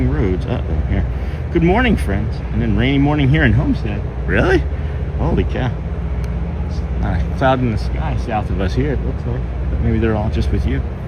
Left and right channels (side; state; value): both; identical; correlation 1.00